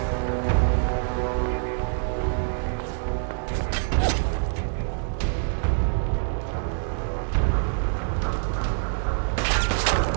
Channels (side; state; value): left; silent; digital silence